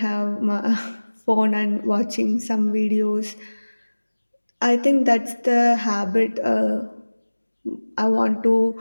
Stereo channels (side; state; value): both; inverted; correlation -1.00